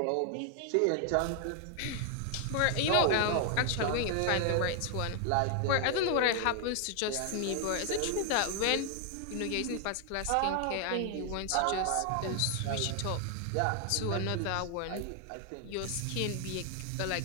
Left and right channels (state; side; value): different; both; correlation 0.00